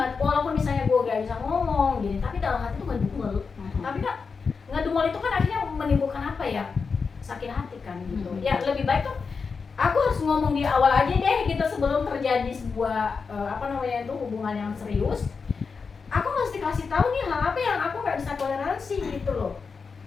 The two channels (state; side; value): quieter; right; 5.1 dB